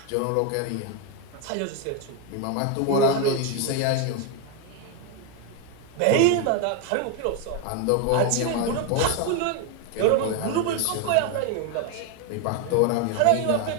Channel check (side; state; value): both; different; correlation 0.02